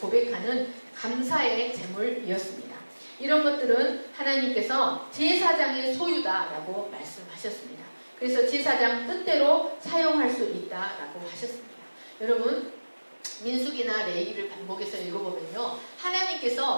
감사의 제물이었습니다. 이런 것들은 하나님께서 제사장의 소유다라고 말씀하셨습니다. 그래서 제사장 뜻대로 사용할 수 있다라고 하셨습니다. 여러분, 민수기나 레위기를 반복해서 읽어보면요,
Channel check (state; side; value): inverted; both; correlation -1.00